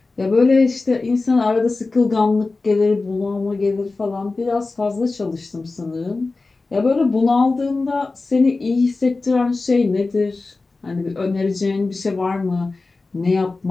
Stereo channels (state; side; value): quieter; right; 3.6 dB